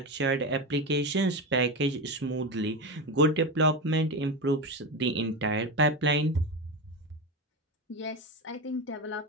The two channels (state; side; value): normal; both; correlation 0.18